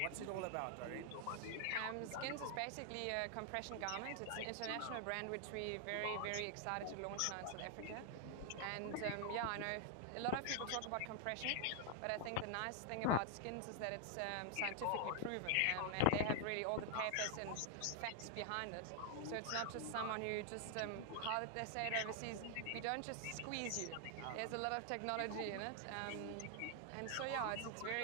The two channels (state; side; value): different; both; correlation 0.00